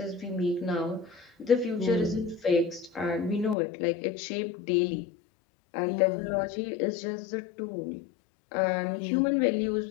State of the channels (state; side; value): drops out; right; at 3.6 s